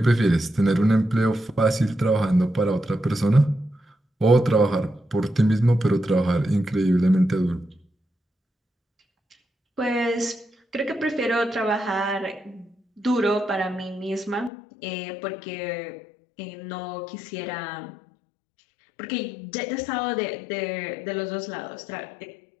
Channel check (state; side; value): drops out; right; at 14.5 s